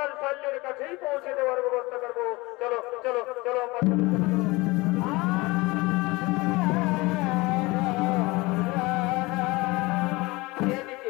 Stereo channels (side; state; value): right; quieter; 22.9 dB